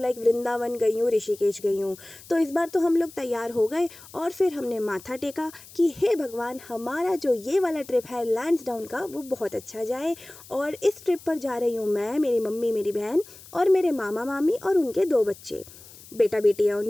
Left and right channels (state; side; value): noise; left; hiss, 20 dB below the sound